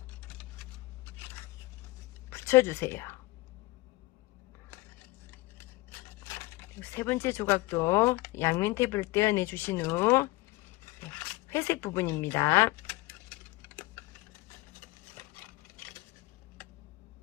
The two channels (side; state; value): right; quieter; 21.1 dB